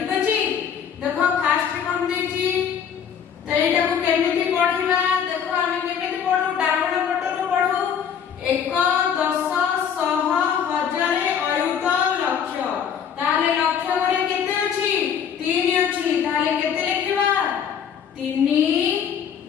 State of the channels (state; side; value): quieter; right; 7.8 dB